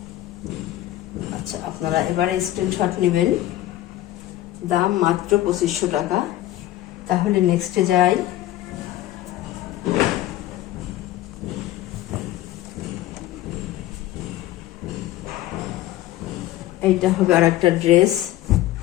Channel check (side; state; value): right; quieter; 14.6 dB